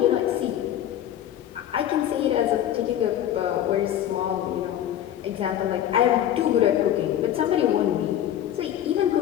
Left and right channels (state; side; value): quieter; right; 11.2 dB